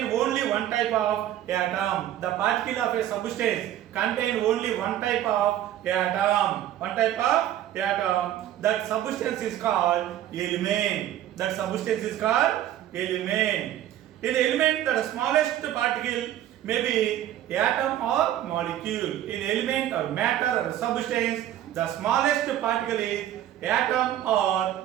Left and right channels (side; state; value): left; quieter; 12.3 dB